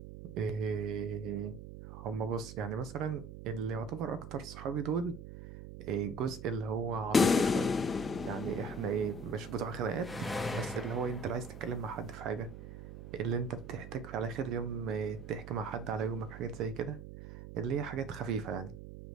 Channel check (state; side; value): noise; right; hum, 12 dB below the sound